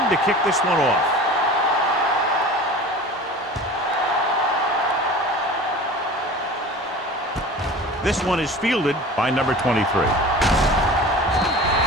to kick this one off. This one is fielded by number 23. Forced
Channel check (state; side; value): normal; both; correlation 0.38